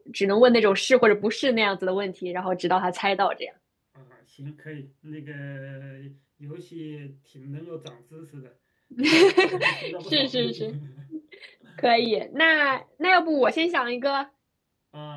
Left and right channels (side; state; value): both; identical; correlation 1.00